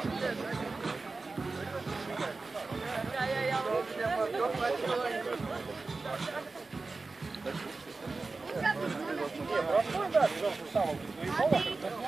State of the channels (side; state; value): left; quieter; 3.8 dB